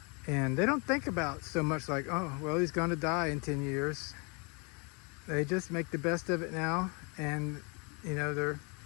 And they don't think about so much like, oh, well, he's going to die in 10 years. They just make the best of it now, and you know, they're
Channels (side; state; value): right; quieter; 32.7 dB